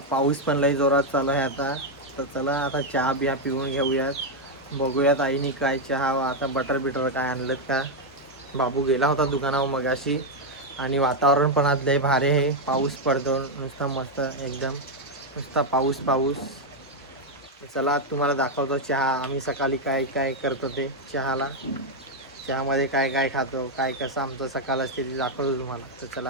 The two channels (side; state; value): both; normal; correlation 0.01